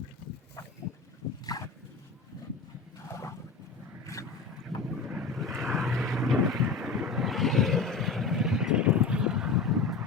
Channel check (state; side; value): quieter; right; 4.4 dB